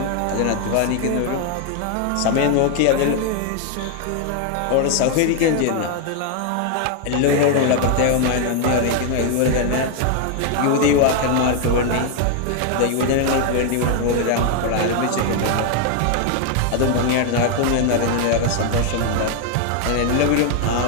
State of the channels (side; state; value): both; different; correlation 0.00